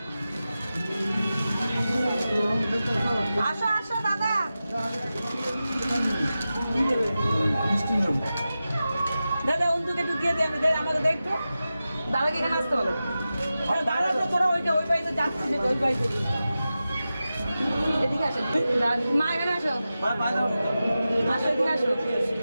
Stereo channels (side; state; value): both; inverted; correlation -0.93